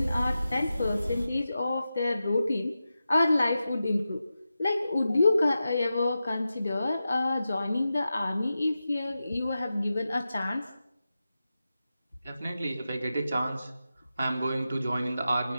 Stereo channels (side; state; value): both; inverted; correlation -0.92